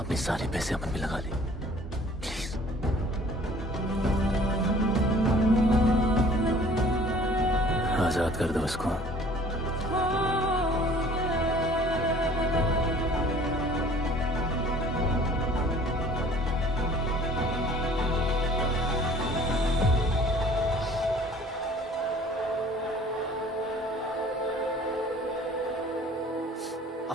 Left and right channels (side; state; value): both; normal; correlation 0.51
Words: सारे पैसे अपन में लगा ले, प्लीज। आजाद कर दो उसको।